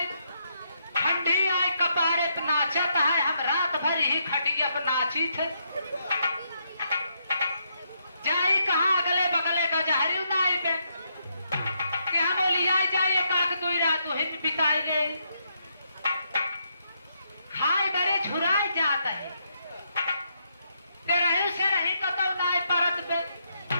ठंडी आए कपारे पे नाचत है हम रात भर ही खटिया पे नाची थे जाई कहाँ अगले बगले का जहरी उनाई पे क्या बोली आई जाए काक दुई रात हित बिताई गई खाए बड़े झुराई जाता है रही से रही कतौ नाई परत पे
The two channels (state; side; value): inverted; both; correlation -0.78